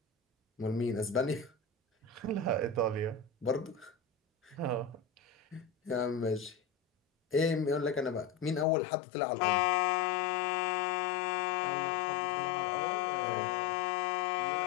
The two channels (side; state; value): right; drops out; at 8.7 s